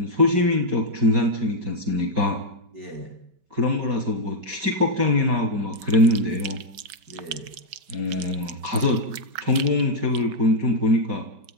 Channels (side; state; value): left; late; 5.2 ms